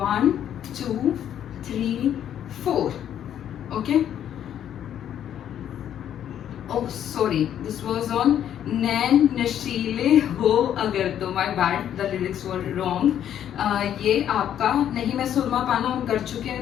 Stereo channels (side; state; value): right; quieter; 10.2 dB